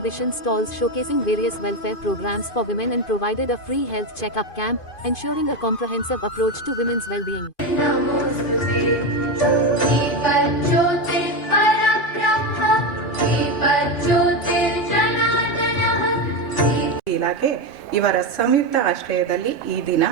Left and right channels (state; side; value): late; right; 2.5 ms